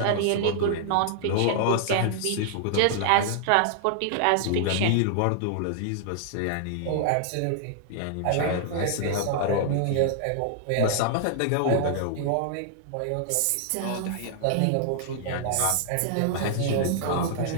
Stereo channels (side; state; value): both; different; correlation -0.01